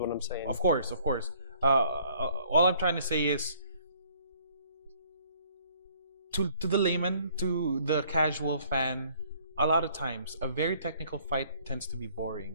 I'm saying. Of course. All I'm trying to say is, to the layman, to the casual fan, a lot of times a very technical fight tends to be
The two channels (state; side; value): inverted; both; correlation -0.60